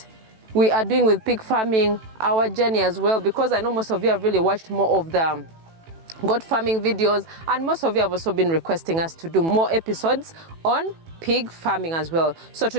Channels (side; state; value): left; late; 18 ms